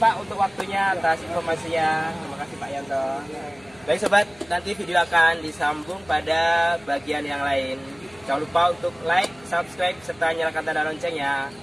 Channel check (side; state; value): left; noise; hum, 26 dB below the sound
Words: untuk waktunya atas informasinya. Terima kasih Pak Yanto. Baik sobat, nanti video akan disambung pada bagian yang lain. Jangan lupa untuk like, subscribe, serta nyalakan tanda loncengnya.